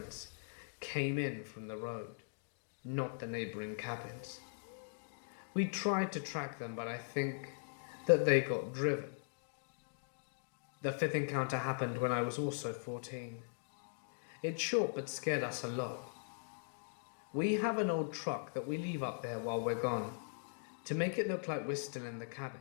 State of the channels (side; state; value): right; silent; digital silence